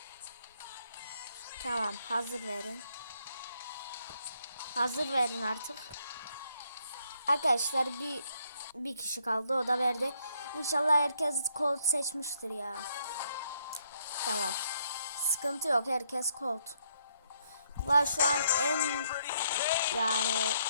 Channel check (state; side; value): inverted; both; correlation -0.72